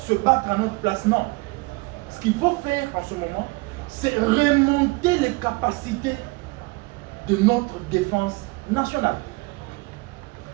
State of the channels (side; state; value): left; quieter; 25.1 dB